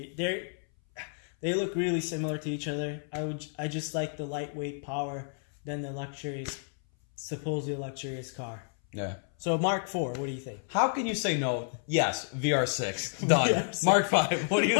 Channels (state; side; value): silent; right; 58 dB below the other